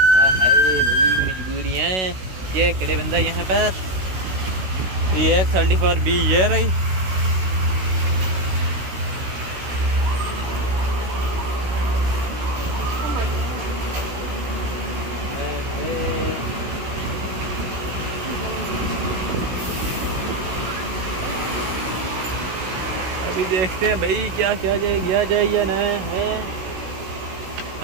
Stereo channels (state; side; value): late; left; 16 ms